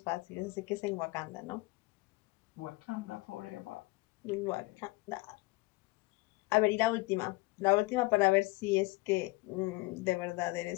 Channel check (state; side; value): quieter; right; 23.0 dB